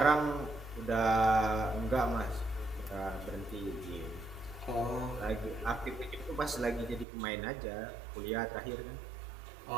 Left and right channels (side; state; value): left; drops out; at 7.1 s